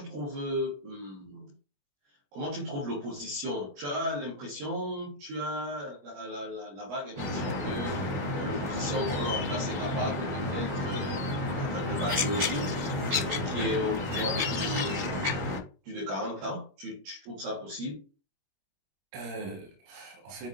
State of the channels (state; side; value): late; left; 21 ms